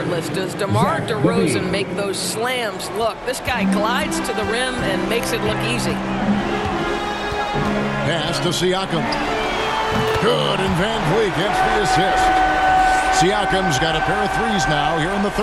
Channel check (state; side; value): identical; both; correlation 1.00